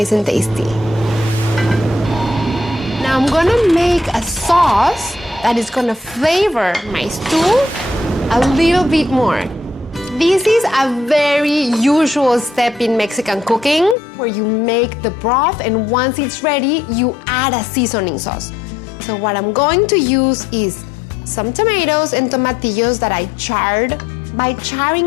and tasty. Now I'm gonna make a sauce that is gonna flavor my stew a little bit more. This is a very usual step in Mexican cooking where you make the broth and once it's ready, you add a seasoning sauce. So what I'm going to use is some tomatoes and tomatillos that I charred. By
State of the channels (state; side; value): drops out; right; at 14.0 s